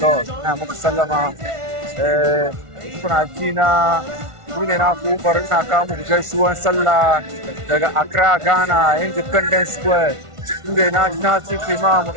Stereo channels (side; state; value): left; late; 1.5 ms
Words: ina muku sallama. Kuna ji na ne na ku bari na kawo muku gaisuwan sallah daga Accra, Ghana, Independence Square. Inda na ci imam